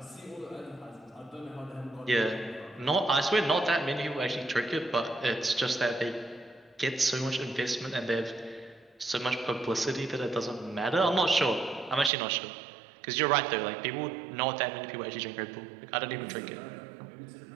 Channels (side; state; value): left; drops out; at 12.1 s